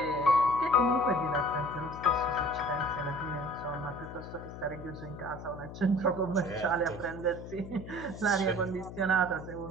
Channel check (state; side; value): noise; left; hum, 12 dB below the sound